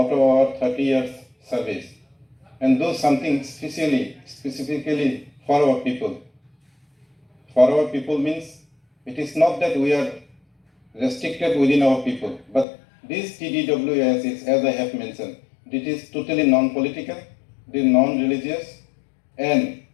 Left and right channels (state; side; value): drops out; right; at 12.7 s